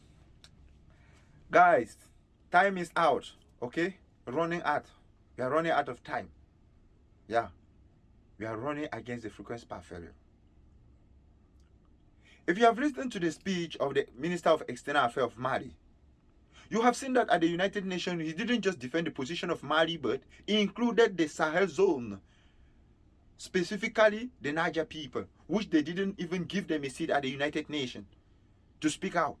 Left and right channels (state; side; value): identical; both; correlation 1.00